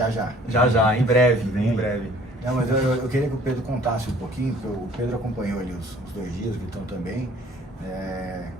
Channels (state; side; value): normal; both; correlation 0.54